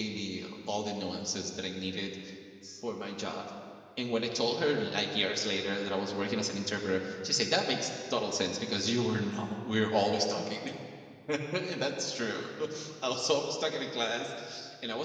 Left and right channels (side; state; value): both; identical; correlation 1.00